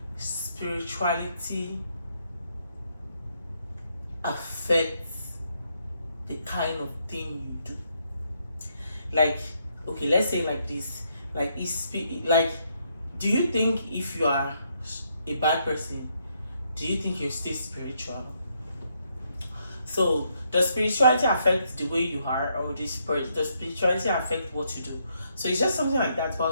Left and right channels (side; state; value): both; inverted; correlation -0.75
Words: spirituality affect the kind of thing you do? Like, okay, let's say like this. Like, do you think if you are a bad person, do you think you're still spiritual? So does spirituality affect the way you are, or does spirituality affect what you do? So it's just something like that.